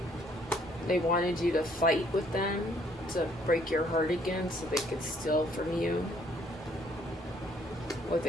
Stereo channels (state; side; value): normal; both; correlation 0.64